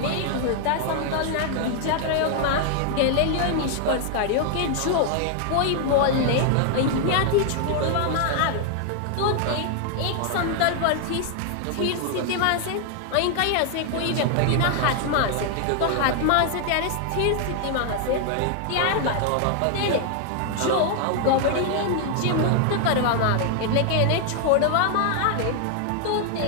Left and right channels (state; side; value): different; both; correlation 0.00